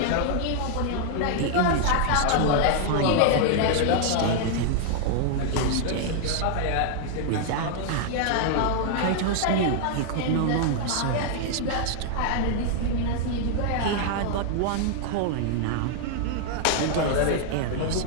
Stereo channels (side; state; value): both; different; correlation 0.00